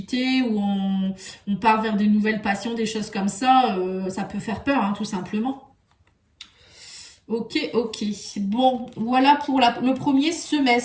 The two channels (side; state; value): both; identical; correlation 1.00